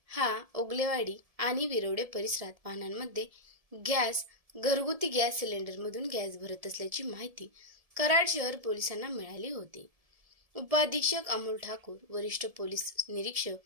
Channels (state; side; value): late; left; 1.7 ms